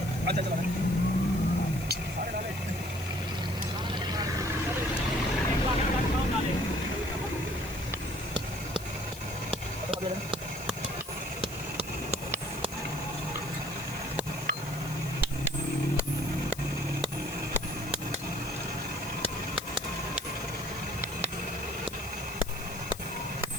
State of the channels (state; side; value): noise; left; hiss, 14 dB below the sound